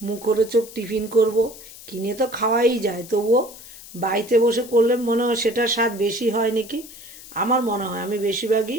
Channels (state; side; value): noise; left; hiss, 17 dB below the sound